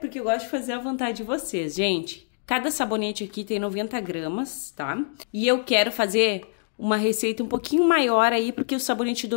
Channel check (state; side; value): silent; right; digital silence